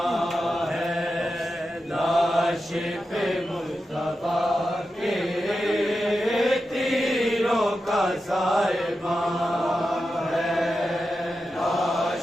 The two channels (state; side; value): normal; both; correlation 0.90